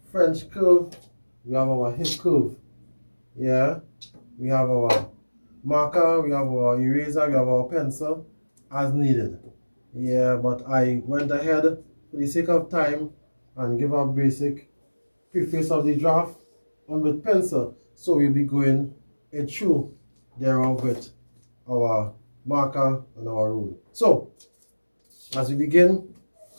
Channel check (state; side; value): inverted; both; correlation -1.00